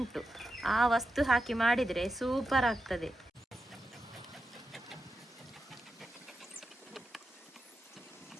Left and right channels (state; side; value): normal; both; correlation 0.89